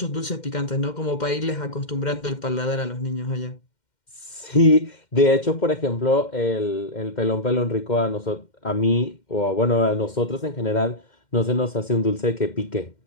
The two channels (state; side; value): late; right; 2.1 ms